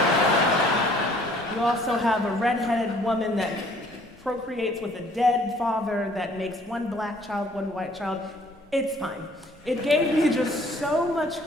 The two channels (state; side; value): normal; both; correlation 0.58